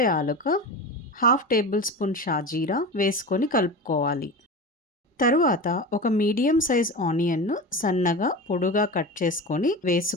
యాలక, హాఫ్ టేబుల్ స్పూన్ షాజీరా వేసుకొని కలుపుకోవాలి. తరువాత ఒక మీడియం సైజ్ ఆనియన్ను సన్నగా పొడుగా కట్ చేసుకొని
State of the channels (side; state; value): both; normal; correlation 0.27